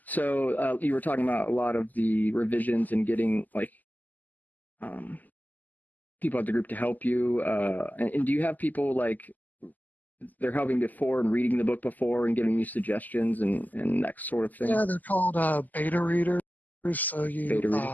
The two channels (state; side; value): late; right; 0.083 ms